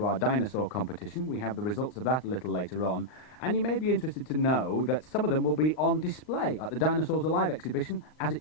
our dinosaur competition. We have the results of that a little later on, and you may be interested to know that some of them will be on display at the Dinosaurs Alive exhibition as it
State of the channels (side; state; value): right; late; 39 ms